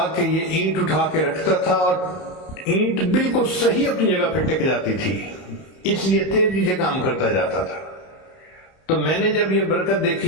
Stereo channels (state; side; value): late; right; 31 ms